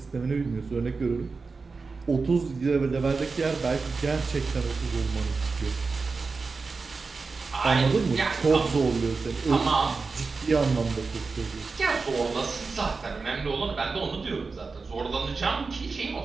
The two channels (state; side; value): quieter; left; 4.3 dB